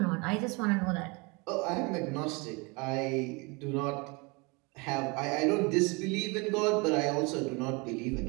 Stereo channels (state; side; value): quieter; left; 28.6 dB